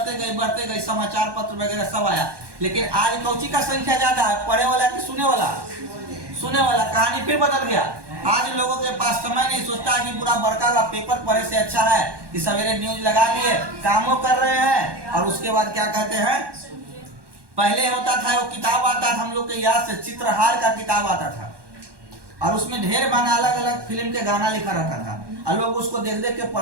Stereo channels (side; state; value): left; late; 1.2 ms